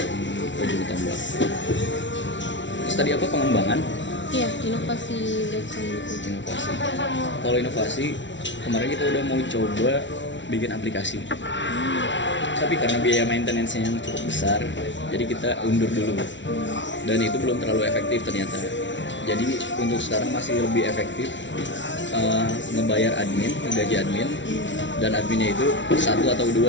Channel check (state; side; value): late; right; 0.54 ms